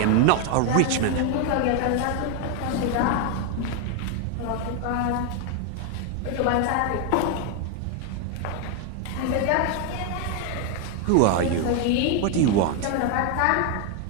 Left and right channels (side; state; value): both; different; correlation 0.01